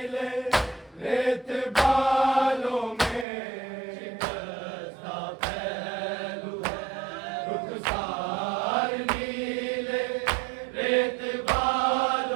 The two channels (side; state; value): left; drops out; at 3.2 s